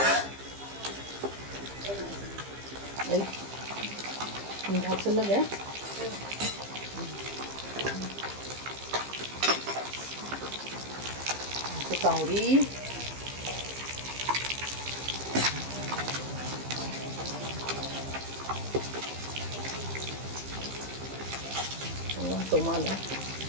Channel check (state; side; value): late; left; 15 ms